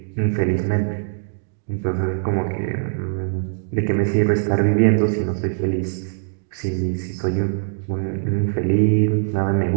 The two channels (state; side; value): silent; left; digital silence